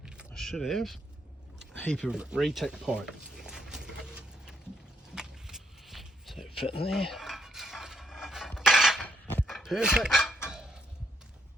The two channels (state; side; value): normal; both; correlation 0.74